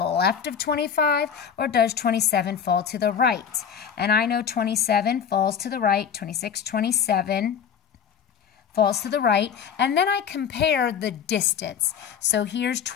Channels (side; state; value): right; quieter; 7.7 dB